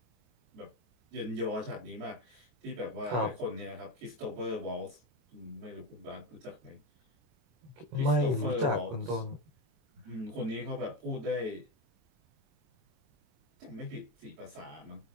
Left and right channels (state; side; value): late; left; 26 ms